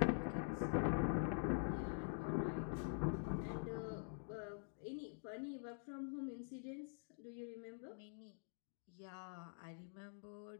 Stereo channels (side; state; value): right; silent; digital silence